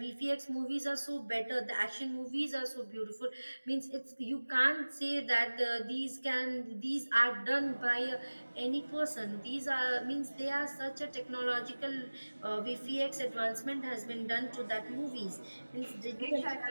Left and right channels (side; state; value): both; inverted; correlation -1.00